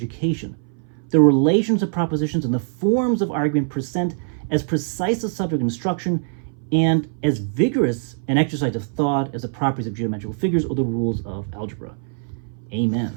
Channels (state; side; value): silent; left; 60 dB below the other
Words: The relations of propositions and the forms of argument present as precise a subject of instruction and as vigorous an exercise of thought as the properties of geometrical figures or the rules of algebra.